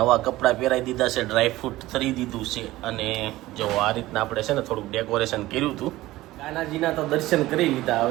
કપડાં પહેરાવી દીધા છે ડ્રાયફ્રૂટ કરી દીધું છે અને જો આ રીતના આપણે છે ને થોડુંક ડેકોરેશન કર્યું હતું કાનાજીના તો દર્શન કરી લીધા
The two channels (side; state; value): left; quieter; 17.1 dB